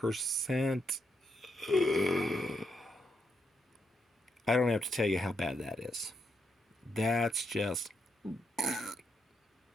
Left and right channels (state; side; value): normal; both; correlation 0.79